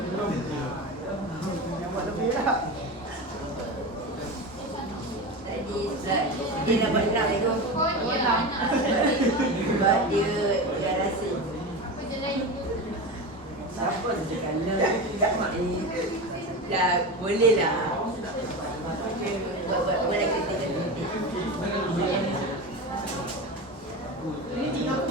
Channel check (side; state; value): both; normal; correlation 0.24